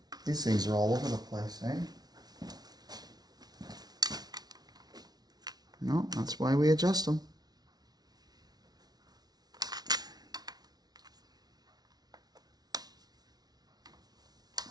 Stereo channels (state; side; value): late; left; 0.19 ms